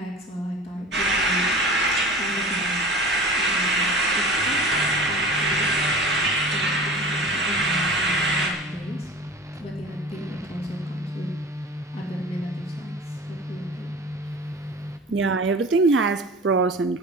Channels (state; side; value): normal; both; correlation 0.38